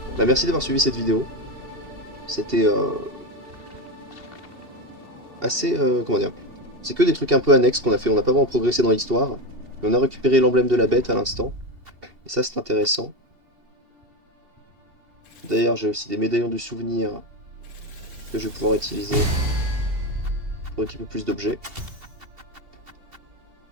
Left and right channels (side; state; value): left; late; 2.7 ms